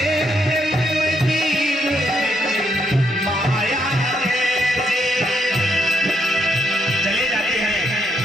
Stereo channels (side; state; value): both; normal; correlation 0.75